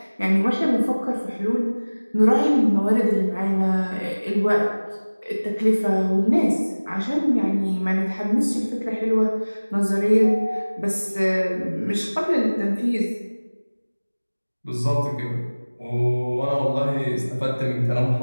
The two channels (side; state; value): both; inverted; correlation -1.00